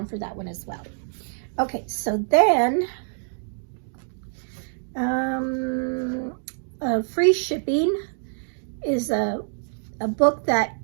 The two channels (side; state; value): left; silent; digital silence